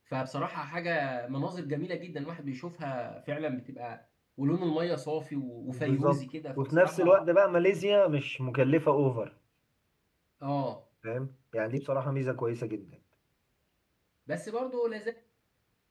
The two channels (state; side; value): identical; both; correlation 1.00